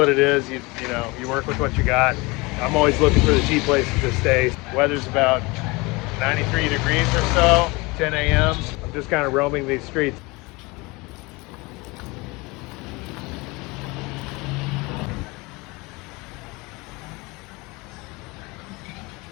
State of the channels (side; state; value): right; quieter; 24.8 dB